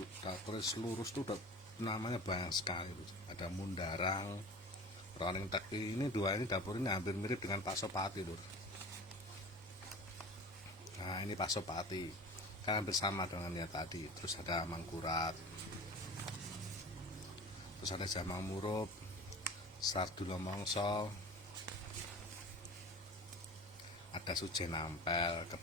lurus tuh namanya banyak sekali. Ada mundarang, roning teki. Ini dua ini dapur ini hampir mirip dengan Pasopati Lur. Nah ini Pasopati, kan hampir sama dengan yang tadi. Terus ada mangkurat, terus ada jamang murup, sardula mongso, ada sujen ampel,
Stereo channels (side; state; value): both; normal; correlation 0.37